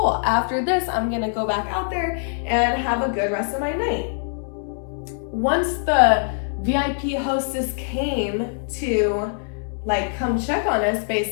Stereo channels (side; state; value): right; silent; 61 dB below the other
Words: After this, I'm gonna go back out there and have a good rest of my night. Once the VIP hostess came to like come check on us,